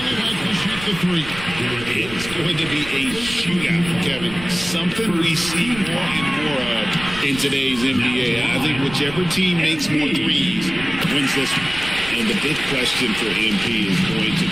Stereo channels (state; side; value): noise; right; rumble, 14 dB below the sound